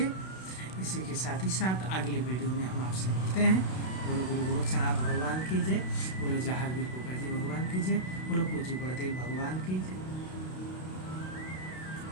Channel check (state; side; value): late; right; 32 ms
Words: इसी के साथ ही साथ अगली वीडियो में हम आपसे मिलते हैं। बोलो गुरु गोरक्षनाथ भगवान की जय, बोलो जहांगीर गोगा जी भगवान की जय, बोलो पूज्य गुरुदेव भगवान की जय।